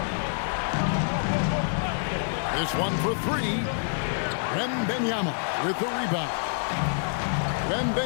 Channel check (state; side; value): silent; right; digital silence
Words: This one for 3. Wembanyama with the rebound.